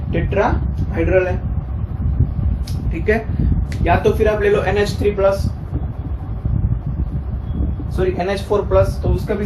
टेट्राहाइड्रल है। ठीक है। या तो फिर आप ले लो NH3+, सॉरी NH4+, तो उसका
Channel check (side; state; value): both; identical; correlation 1.00